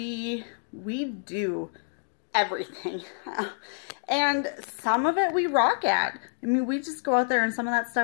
do everything. And some of it we rock at. I mean, we just go out there and some of that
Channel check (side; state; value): right; silent; digital silence